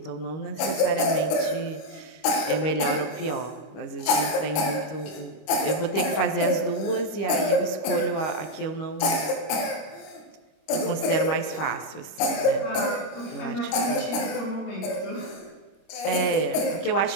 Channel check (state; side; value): late; right; 26 ms